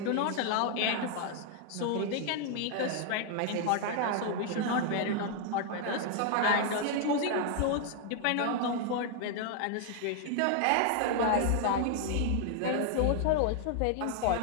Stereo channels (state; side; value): different; both; correlation 0.00